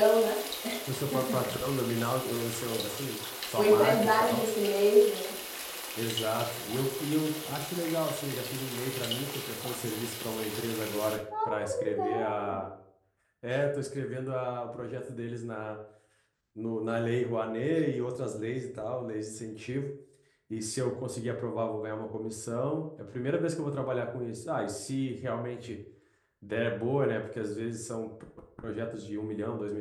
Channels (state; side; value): identical; both; correlation 1.00